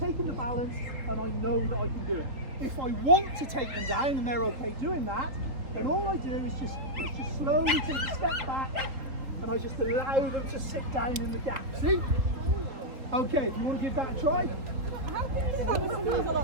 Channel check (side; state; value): left; late; 3.8 ms